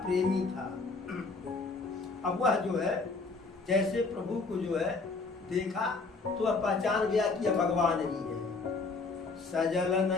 प्रेमी था। अब वह जो है जैसे प्रभु को जो है देखा तो वह पहचान गया कि यह भगवान ही है। सजल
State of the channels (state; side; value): quieter; right; 4.0 dB